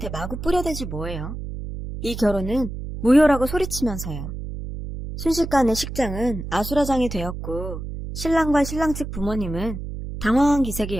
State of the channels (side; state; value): right; noise; hum, 8 dB below the sound